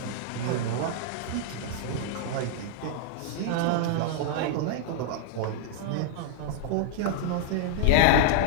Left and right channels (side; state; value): both; different; correlation -0.01